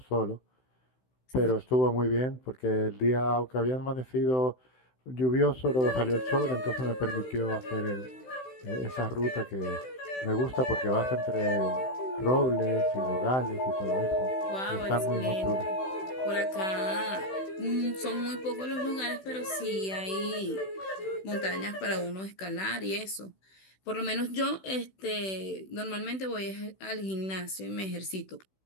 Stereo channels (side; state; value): right; late; 16 ms